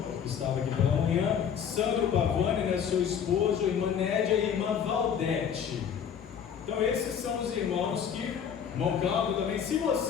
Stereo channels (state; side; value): quieter; right; 7.9 dB